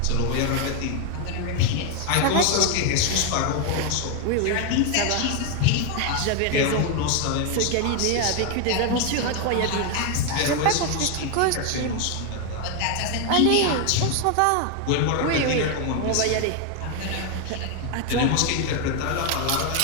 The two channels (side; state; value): both; different; correlation 0.01